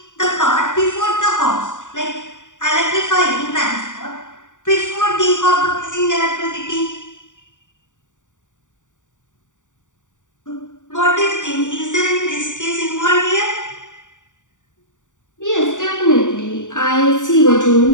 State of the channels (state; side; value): late; right; 0.86 ms